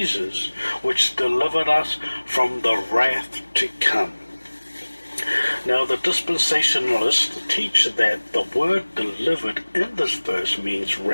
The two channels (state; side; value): inverted; both; correlation -1.00